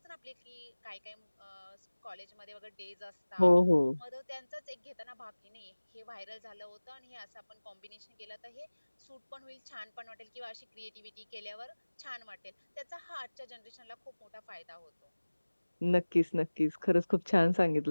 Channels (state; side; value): inverted; both; correlation -1.00